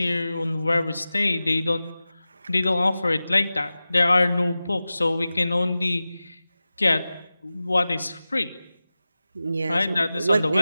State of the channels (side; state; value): both; inverted; correlation -0.96